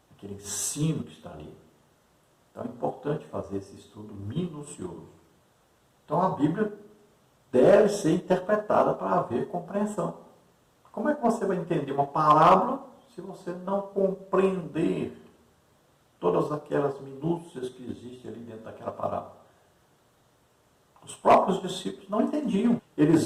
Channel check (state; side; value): identical; both; correlation 1.00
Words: Aquele ensino que está ali. Então é importante fazer esse estudo minucioso. Então a Bíblia deve ser interpretada para haver compreensão. Como é que você vai entender uma palavra se você não compreender todas aquelas minúcias que existem ali dentro daquela palavra? Os próprios discípulos não entendiam.